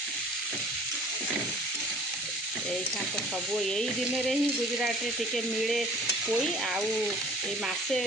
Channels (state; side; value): normal; both; correlation 0.50